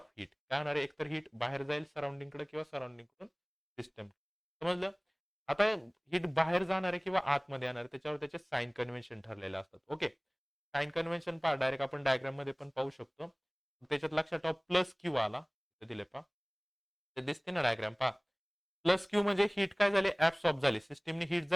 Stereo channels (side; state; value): both; identical; correlation 1.00